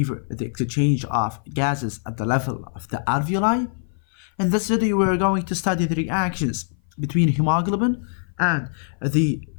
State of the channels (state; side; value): silent; right; 57 dB below the other